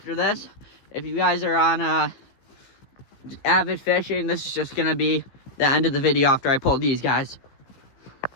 this. If you guys are on avid fishing, this is just gonna be the end of the video after I pull these guys.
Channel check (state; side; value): late; right; 15 ms